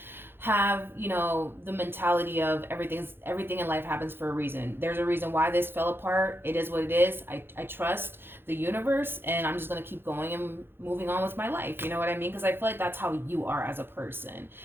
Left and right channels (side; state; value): left; late; 0.10 ms